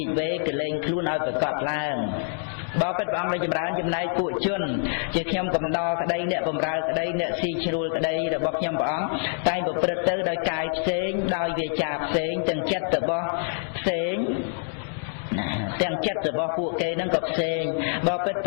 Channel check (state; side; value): silent; right; digital silence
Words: ិវេកលែងខ្លួនឲ្យប្រកបឡើងបបិទ្ធព្រះអង្គដ៏ចម្រើនចំណែកពួកជនជាខ្ញុំកំដរក្តីអ្នកបម្រើក្តីអ្នកស៊ីជ្រួលក្តីរបស់ខ្ញុំព្រះអង្គតែងប្រព្រឹត្តទៅដោយកាយផ្សេងដោយវាចាផ្សេងទាំងចិត្តរបស់ផ្សេងទាំងចិត្តរបស់ពួកគេនឹងក៏ផ្សេងបបិទ្ធព